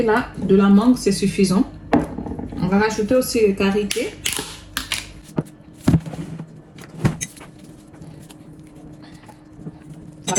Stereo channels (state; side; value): identical; both; correlation 1.00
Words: de la mangue, c'est suffisant. On va rajouter aussi les karité.